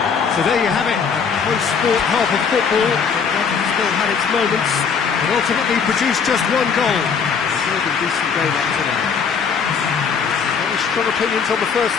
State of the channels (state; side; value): quieter; right; 6.2 dB